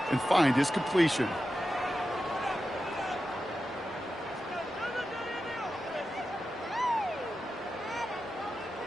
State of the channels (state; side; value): normal; both; correlation 0.91